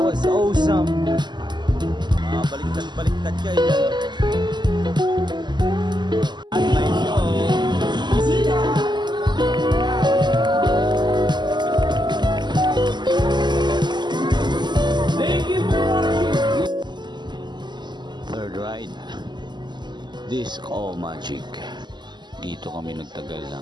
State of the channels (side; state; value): left; late; 0.21 ms